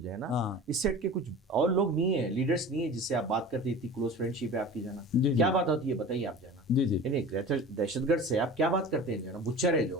ہے نا اس سیٹ کے کچھ اور لوگ نہیں ہیں, لیڈرز نہیں ہیں جس سے آپ بات کرتے, اتنی کلوز فرینڈ شپ ہے آپ کی, جو ہے نا کیا بات ہوتی ہے بتائیے آپ, جو ہے نا یعنی دہشت گرد سے آپ کیا بات کرتے ہیں, جو ہے نا بچر ہے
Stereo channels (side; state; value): both; normal; correlation 0.37